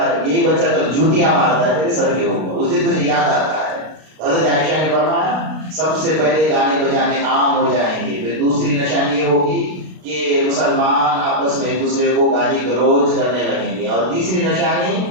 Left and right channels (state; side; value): late; left; 32 ms